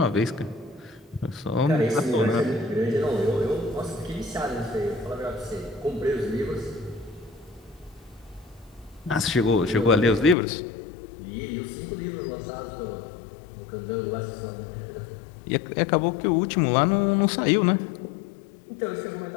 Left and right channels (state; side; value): drops out; right; at 10.4 s